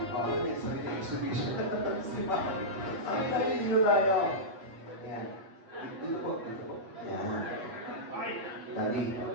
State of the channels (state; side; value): late; left; 8.2 ms